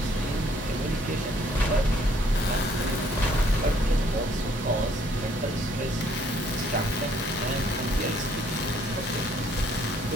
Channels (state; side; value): normal; both; correlation 0.64